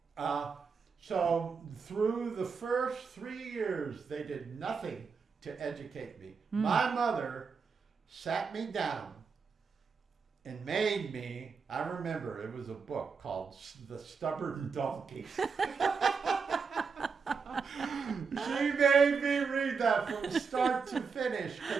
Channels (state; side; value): quieter; left; 5.4 dB